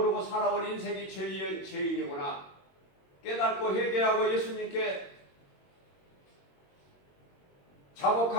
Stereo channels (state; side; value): late; right; 21 ms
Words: 살아온 인생이 죄인이구나. 깨닫고 회개하고 예수님께